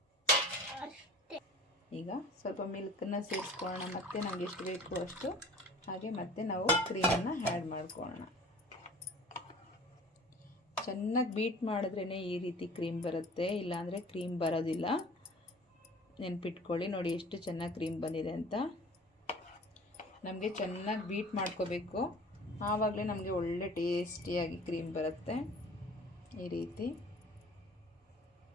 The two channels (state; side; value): normal; both; correlation 0.46